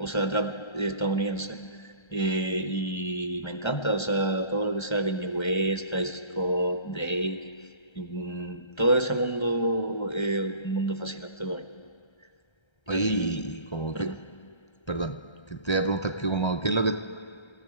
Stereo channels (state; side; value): late; right; 1.3 ms